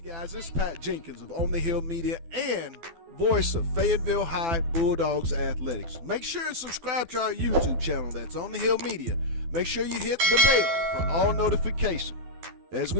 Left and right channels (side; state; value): left; late; 12 ms